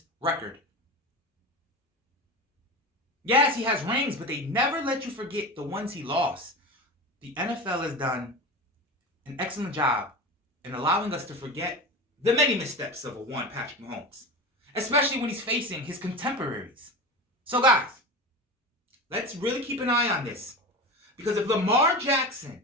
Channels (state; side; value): normal; both; correlation 0.27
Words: record. Yes, he has rings, but they never let you forget the ones he lost. The NFL has done an excellent job in allowing us to forget the many missteps of a one Patrick Mahomes, especially when he's facing his contemporaries. So guys, let's really keep an eye on this, because if Lamar Jackson